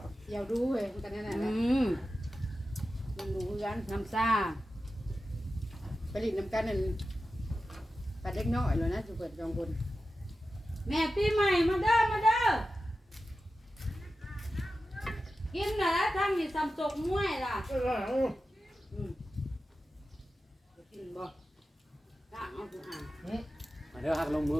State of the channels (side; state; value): both; normal; correlation 0.92